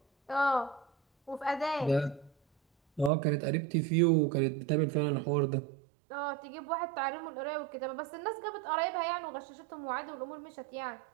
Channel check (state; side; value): drops out; left; at 3.1 s